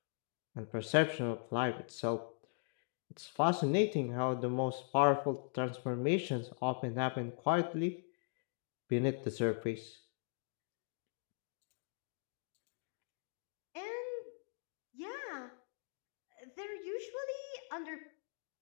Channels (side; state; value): right; silent; digital silence